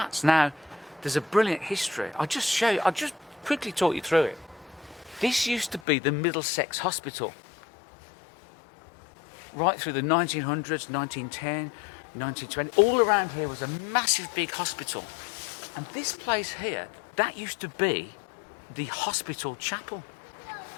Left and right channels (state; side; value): drops out; right; at 5.8 s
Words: Now, there's a brilliant history. I'll just quickly talk you through it. This used to be the Middlesex Hospital. Right through the 1900s, 1910, 1920, all around here was a massive big hospital. And this place here, that used to be the hospital chapel.